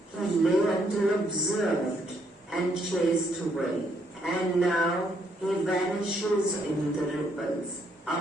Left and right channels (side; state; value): both; normal; correlation 0.72